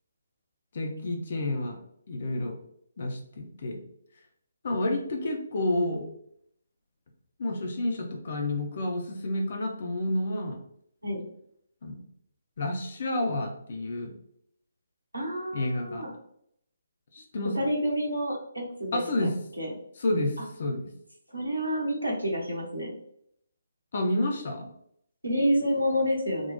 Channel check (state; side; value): inverted; both; correlation -0.81